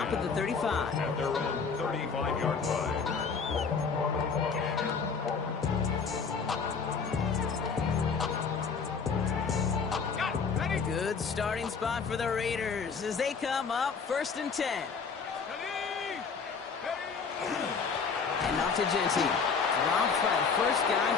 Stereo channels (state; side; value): quieter; right; 5.5 dB